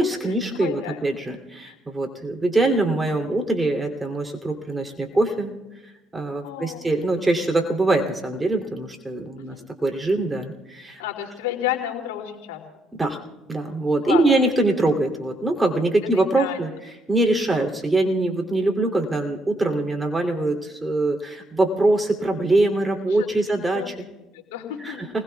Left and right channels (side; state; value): both; normal; correlation 0.77